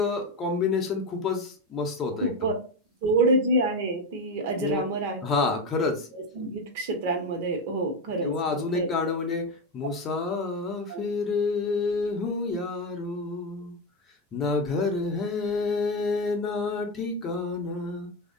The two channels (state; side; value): normal; both; correlation 0.12